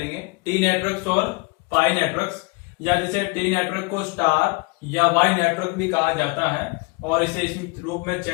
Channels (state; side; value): quieter; right; 26.8 dB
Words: टी नेटवर्क्स और पाई नेटवर्क्स, या जिसे टी नेटवर्क को स्टार या वाई नेटवर्क भी कहा जाता है और इसे इस रूप में